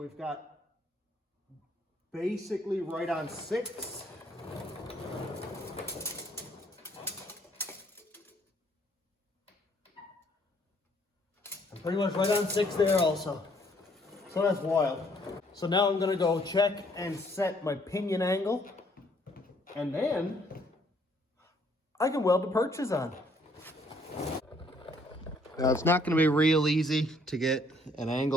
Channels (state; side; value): normal; both; correlation 0.65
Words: got basically right on 6. I'm pretty much right on 6 there also. So that's wild. So now I'm gonna go check and set my pinion angle, and then I can weld the perches on. Now it's not going to be real easy to get an